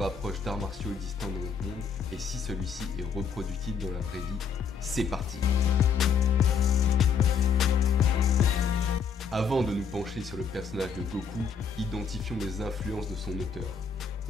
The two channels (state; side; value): quieter; right; 6.2 dB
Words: d'arts martiaux existants dans notre monde et si celui-ci est reproductible dans la vraie vie. C'est parti! Avant de nous pencher sur le personnage de Goku, identifions les influences de son auteur.